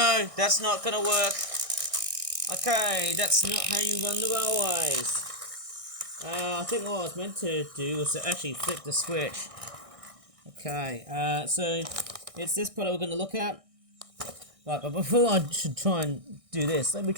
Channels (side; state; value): left; late; 1.6 ms